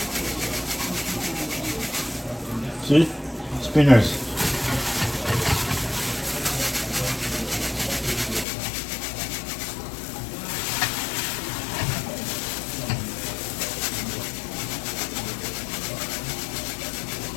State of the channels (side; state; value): right; drops out; at 8.5 s